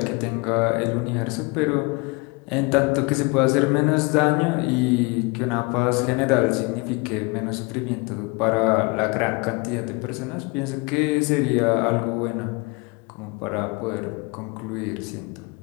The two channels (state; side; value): quieter; right; 27.9 dB